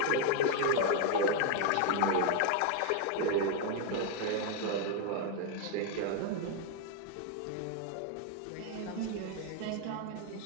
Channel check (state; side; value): different; both; correlation 0.00